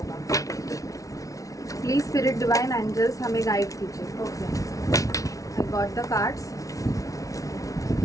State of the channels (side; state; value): right; late; 0.17 ms